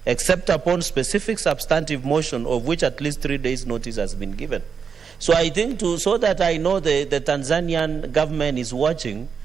except upon specific substantive motion of which at least 3 days notice has been given. So I think so that I know the Tanzanian government is watching,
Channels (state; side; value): quieter; left; 6.3 dB